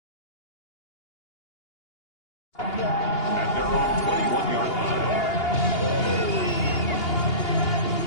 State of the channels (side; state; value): right; late; 2.8 ms